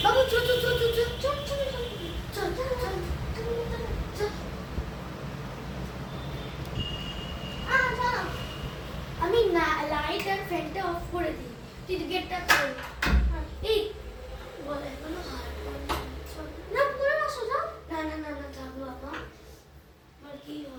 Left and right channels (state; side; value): identical; both; correlation 1.00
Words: বাবু চল চল চল চল চল চল চল চল চল চল। আচ্ছা আমি না লাইট আর ফ্যানটা অফ করে দিই, তুই গেটটা খোল। এই বলে কোনো হার না পুরো না সোজা না না না না থাক বাবা, আর কি